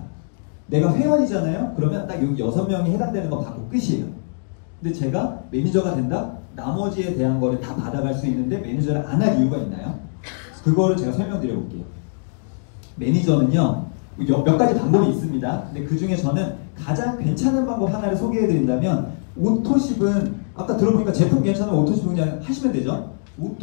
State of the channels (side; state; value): right; silent; digital silence